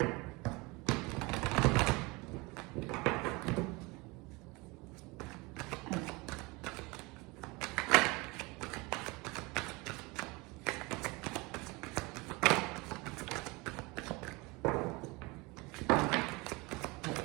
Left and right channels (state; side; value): quieter; left; 25.1 dB